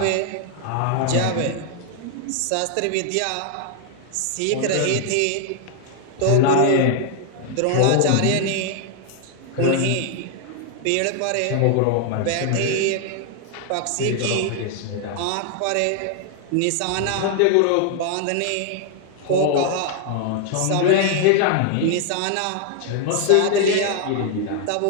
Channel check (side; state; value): both; different; correlation 0.00